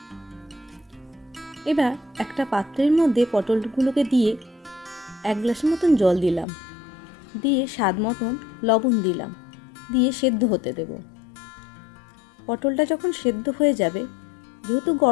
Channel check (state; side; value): drops out; right; at 6.5 s